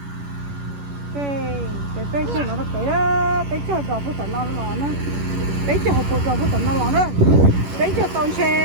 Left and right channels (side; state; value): left; late; 11 ms